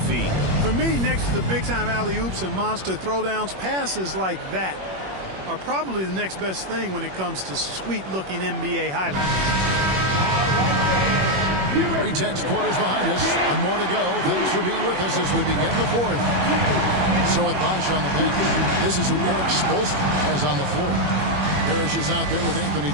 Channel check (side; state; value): left; late; 21 ms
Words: For me, next to the big-time alley-oops and monster throwdowns, passes like that are probably the next best thing when it comes to sweet-looking NBA highlights. 3 tenths quarters behind us. One more to go. Thanks for being with us as we begin the fourth. So with Bosch on the bench, this is who Eric Spoelstra has on the floor. Parrish is out there with Anthony